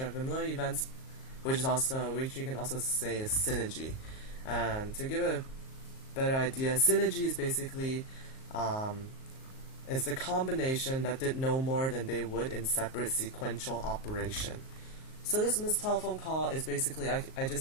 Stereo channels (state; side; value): late; right; 38 ms